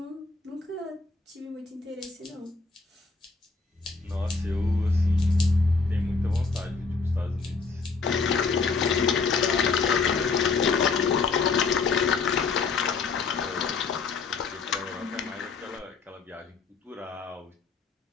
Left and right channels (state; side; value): quieter; right; 4.5 dB